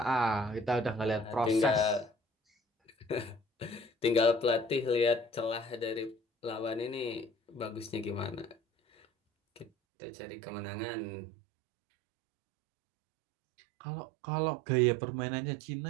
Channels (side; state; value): left; drops out; at 9.7 s